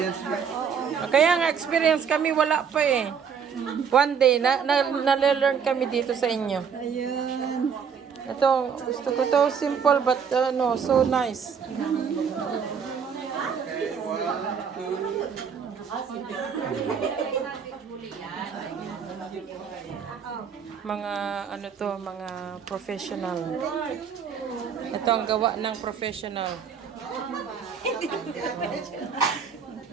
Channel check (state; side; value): quieter; left; 6.8 dB